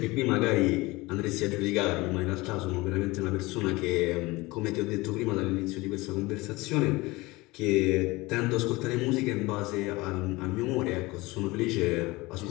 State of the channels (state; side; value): quieter; right; 21.7 dB